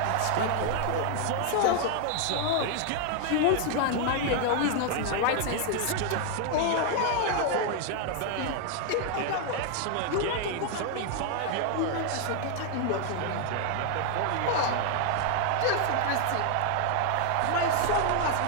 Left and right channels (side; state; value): both; different; correlation 0.00